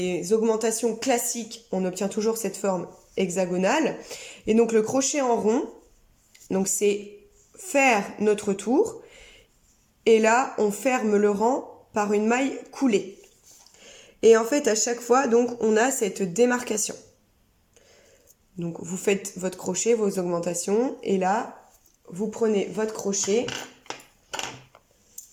augmentations classiques, on obtient toujours cette forme hexagonale. Et donc le crochet en rond, donc c'est faire notre tour. Et là, on ferme le rang par une maille coulée. Et en fait, à chaque fois, donc, on a cette démarcation. Donc, vous faites votre crochet, vos augmentations, et là, vous prenez votre crochet.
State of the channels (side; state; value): both; identical; correlation 1.00